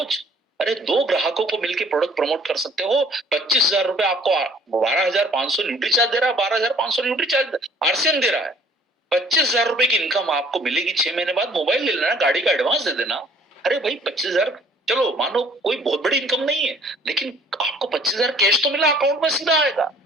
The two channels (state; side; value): normal; both; correlation 0.56